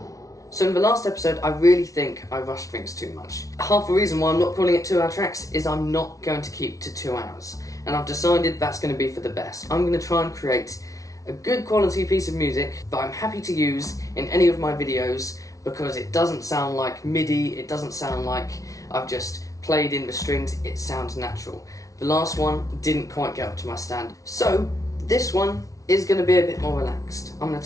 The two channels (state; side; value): late; right; 0.17 ms